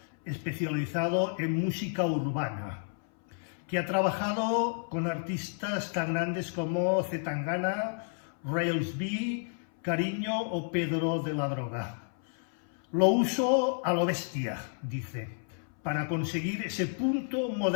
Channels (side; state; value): right; silent; 57 dB below the other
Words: especializado en música urbana, que ha trabajado con artistas tan grandes como Zetangana, Rails B, Cariño o Pedro de la Droga. Lo uso a lo bestia, dice, para conseguir ese punto